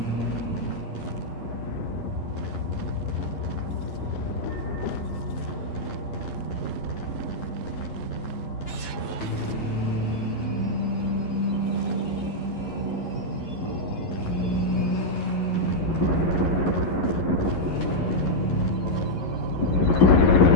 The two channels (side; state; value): right; late; 11 ms